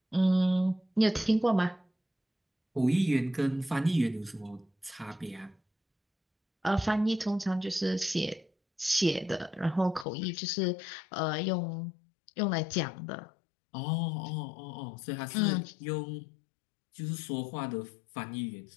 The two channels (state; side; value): drops out; right; at 10.1 s